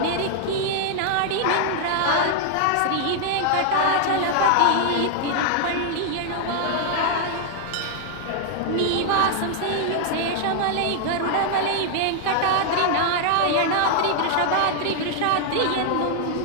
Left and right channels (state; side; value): different; both; correlation 0.00